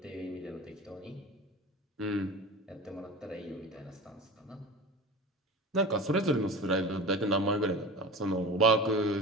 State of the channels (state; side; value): normal; both; correlation 0.33